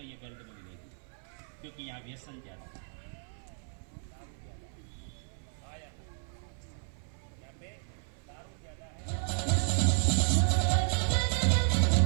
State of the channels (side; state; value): left; silent; 56 dB below the other